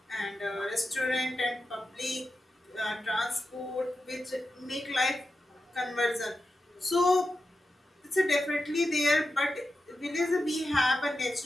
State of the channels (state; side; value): normal; both; correlation 0.90